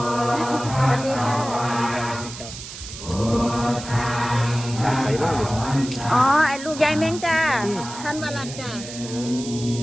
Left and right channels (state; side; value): noise; right; hiss, 12 dB below the sound